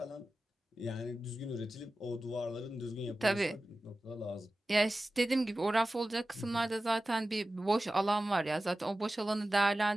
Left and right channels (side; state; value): both; normal; correlation 0.95